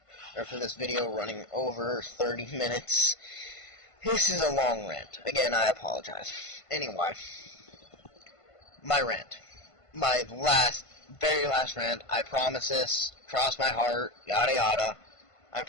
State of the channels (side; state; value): right; late; 1.5 ms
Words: video running over 30 minutes. This is a long rant. Again, I apologize. Anyway, my rant. My very last rant. I promise this. Cross my heart. Yada yada. I